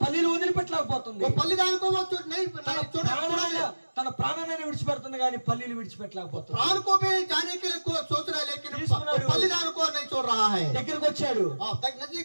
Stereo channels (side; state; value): both; inverted; correlation -1.00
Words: పల్లీలు వదిలిపెట్టలేకపోతుంది. वो पल्लीदान को वो नहीं తన छोड़ा ప్రాణమైన తన ప్రాణాన్ని విడిచిపెడుతుంది కానీ పల్లీలు విడిచిపెట్టలేకపోతుంది. प्राण को भी जाने के लिए सोच रहा है लेकिन తీసుకున్నాడు. बलिदान को नहीं छोड़ रहा है। దగ్గరికి వచ్చాడు,